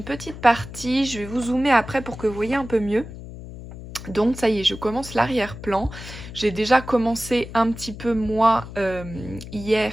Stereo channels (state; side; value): noise; left; hum, 13 dB below the sound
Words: petite partie. Je vais vous zoomer après pour que vous voyez un peu mieux. Donc ça y est, je commence l'arrière-plan. J'ai déjà commencé un petit peu moi hier